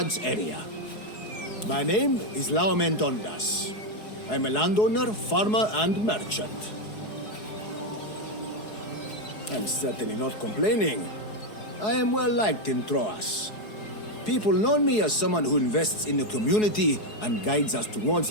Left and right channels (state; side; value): late; right; 4.7 ms